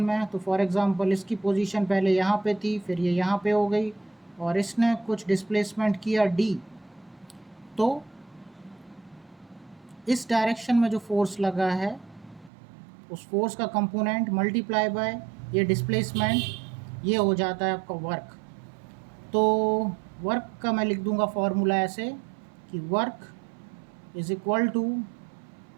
तो फॉर एग्ज़ाम्पल इसकी पोजीशन पहले यहाँ पे थी, फिर ये यहाँ पे हो गई और इसने कुछ डिस्प्लेसमेंट किया डी। तो इस डायरेक्शन में जो फोर्स लगा है उस फोर्स का कंपोनेंट मल्टीप्लाई बाय ये डिस्प्लेसमेंट, ये हो जाता है आपका वर्क। तो वर्क का मैं लिख दूंगा फॉर्मूला ऐसे कि work is equal to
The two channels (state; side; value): drops out; left; at 12.5 s